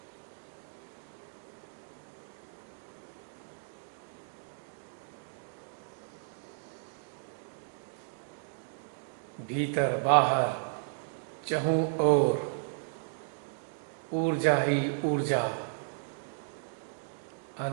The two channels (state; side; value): silent; left; digital silence